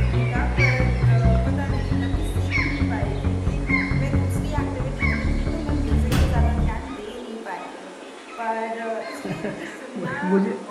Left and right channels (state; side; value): identical; both; correlation 1.00